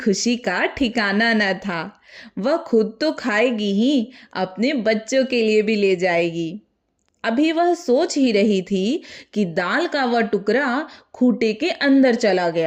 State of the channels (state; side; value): identical; both; correlation 1.00